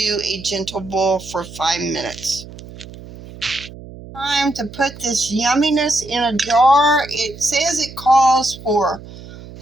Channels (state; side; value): noise; right; hum, 16 dB below the sound